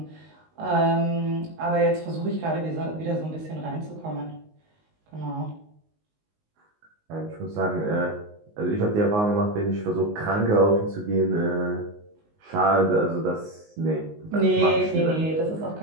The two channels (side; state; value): left; late; 19 ms